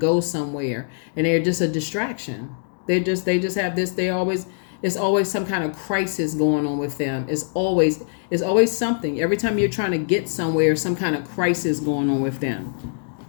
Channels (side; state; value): right; silent; digital silence